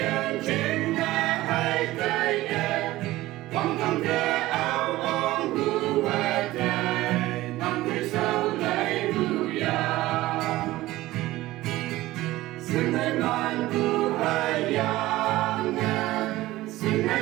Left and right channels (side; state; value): left; quieter; 17.2 dB